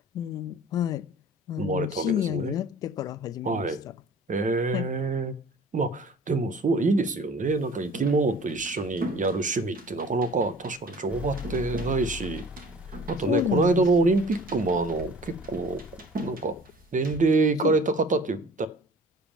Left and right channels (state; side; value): normal; both; correlation 0.47